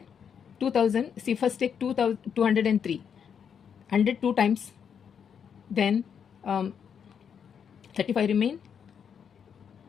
2000. See, first take 203. 100 2 times. Then 35 remain.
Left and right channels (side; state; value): right; quieter; 7.5 dB